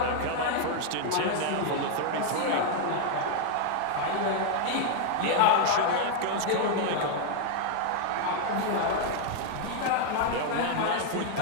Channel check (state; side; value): different; both; correlation 0.00